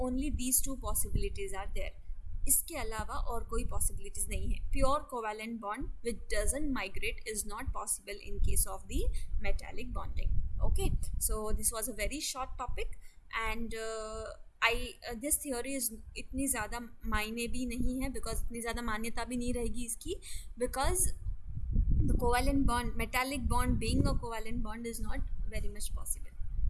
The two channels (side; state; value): both; identical; correlation 1.00